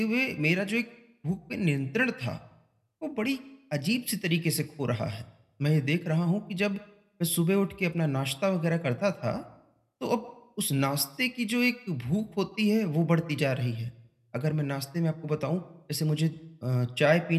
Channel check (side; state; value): both; identical; correlation 1.00